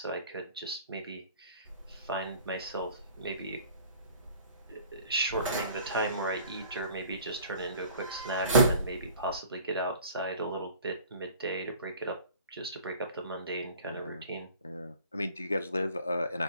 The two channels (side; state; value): both; inverted; correlation -0.49